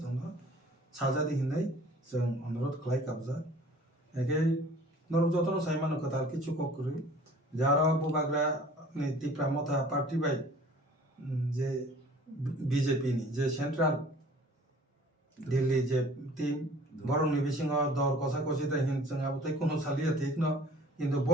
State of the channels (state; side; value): normal; both; correlation 0.49